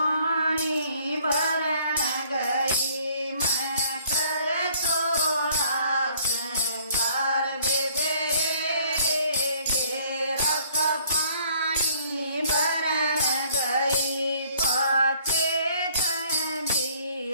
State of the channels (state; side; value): inverted; both; correlation -0.59